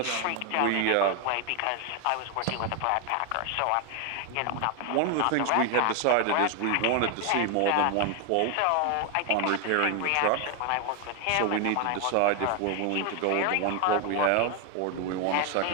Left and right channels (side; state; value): both; different; correlation 0.01